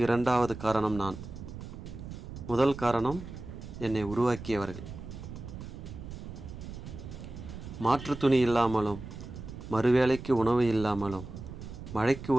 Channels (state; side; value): noise; right; rumble, 11 dB below the sound